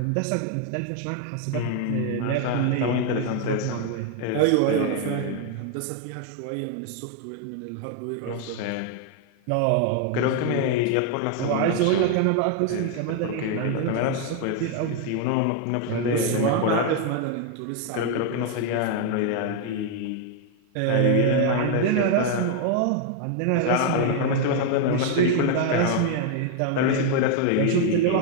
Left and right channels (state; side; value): different; both; correlation 0.00